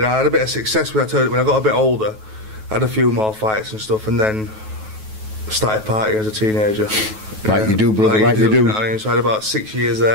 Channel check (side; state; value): left; late; 9.3 ms